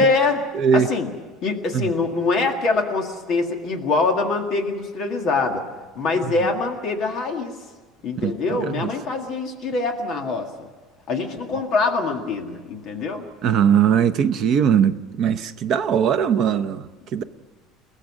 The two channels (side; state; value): both; normal; correlation 0.46